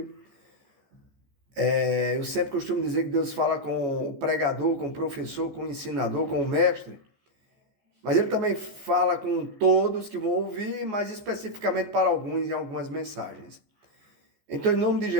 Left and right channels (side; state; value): left; late; 14 ms